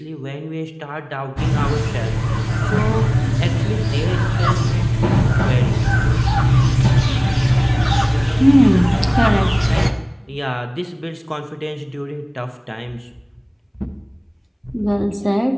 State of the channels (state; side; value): identical; both; correlation 1.00